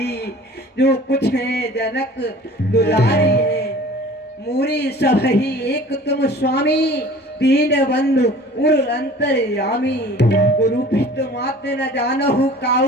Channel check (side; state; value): both; normal; correlation 0.45